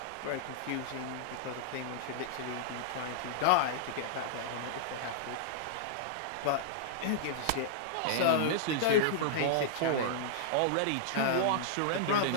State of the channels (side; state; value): both; different; correlation -0.01